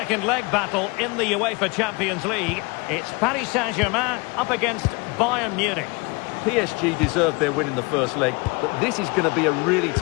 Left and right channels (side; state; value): right; quieter; 27.9 dB